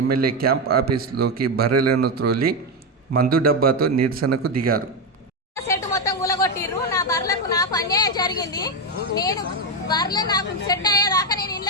ఎమ్మెల్యే క్యాంప్ ఆఫీస్లోకి బర్రెలను త్రోలి మందు డబ్బాతో నిరసనకు దిగారు. నా బర్రెలకు నాకు అన్యాయం జరిగింది. నేను బర్రెలు నాకు సెట్ అయ్యేదాకా నేను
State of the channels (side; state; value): both; normal; correlation 0.10